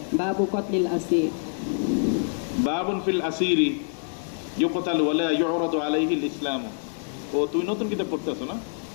বাবু কতলিল আসির। বাবুন ফিল আসিরি ইউকতাল ওয়ালা ইউরাদু আলাইহিল ইসলাম। ও তুই নতুন কিতাব পড়তে আছো না?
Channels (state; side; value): silent; right; 61 dB below the other